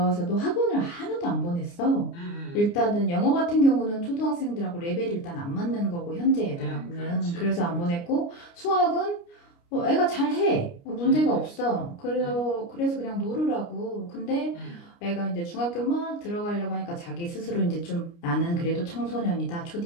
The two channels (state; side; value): late; right; 29 ms